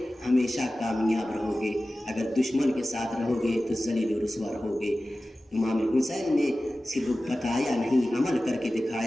ہمیشہ کامیاب رہو گے، اگر دشمن کے ساتھ رہو گے تو ذلیل و رسوا رہو گے۔ امام حسین نے صرف بتایا نہیں، عمل کر کے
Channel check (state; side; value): normal; both; correlation 0.96